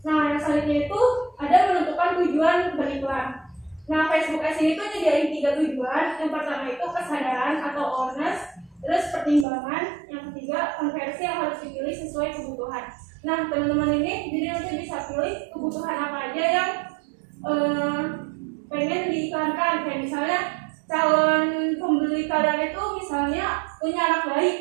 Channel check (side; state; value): left; drops out; at 9.5 s